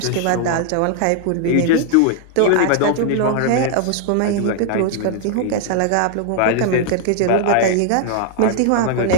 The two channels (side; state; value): both; different; correlation 0.00